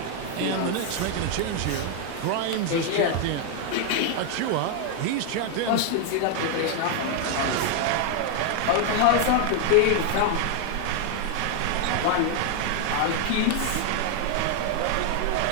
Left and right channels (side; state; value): both; different; correlation 0.00